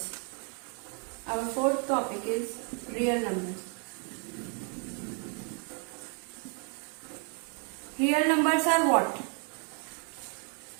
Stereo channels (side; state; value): left; quieter; 39.8 dB